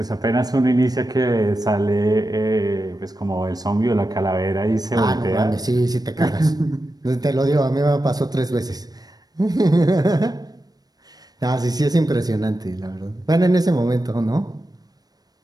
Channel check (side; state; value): left; late; 0.19 ms